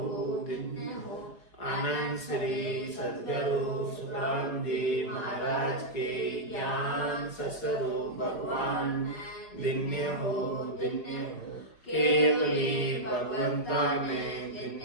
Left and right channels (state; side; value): late; right; 4.8 ms